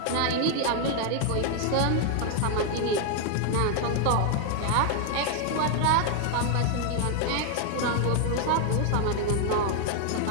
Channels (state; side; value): different; both; correlation 0.00